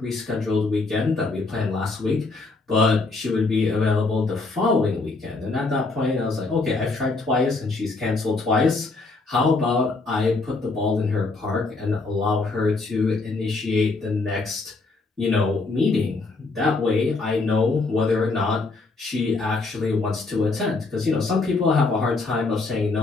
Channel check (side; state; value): right; quieter; 3.7 dB